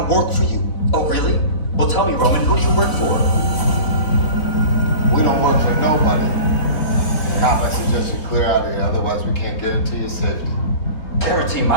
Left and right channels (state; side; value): late; right; 3.9 ms